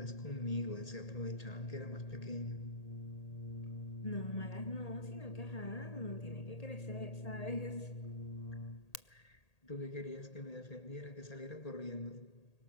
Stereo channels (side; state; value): right; late; 1.8 ms